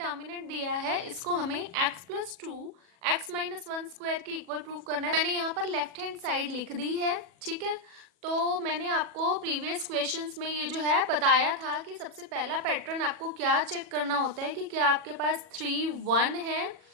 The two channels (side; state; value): left; late; 40 ms